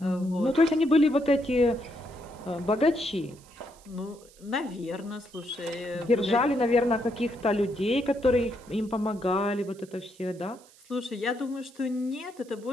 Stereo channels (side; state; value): right; noise; hiss, 26 dB below the sound